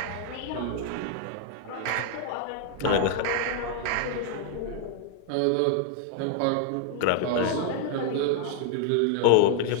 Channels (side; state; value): both; different; correlation 0.00